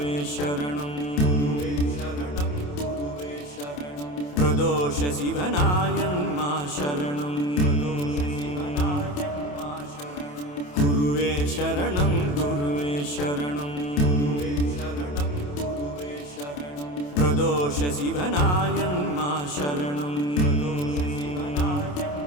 சரணம் பிரதோஷ சிவனாயன்மா சரணம் குருவே சரணம் குருவே சரணம் பிரதோஷ சிவனாயன்மா சரணம்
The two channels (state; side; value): late; right; 28 ms